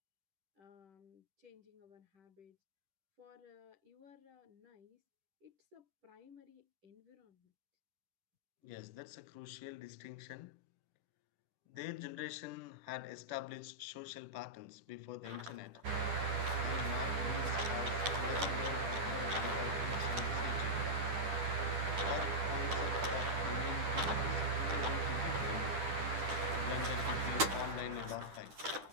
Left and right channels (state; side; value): late; left; 10 ms